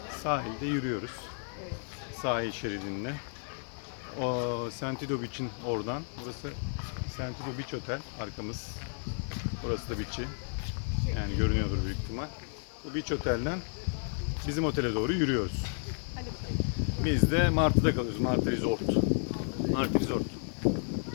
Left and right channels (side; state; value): right; silent; 56 dB below the other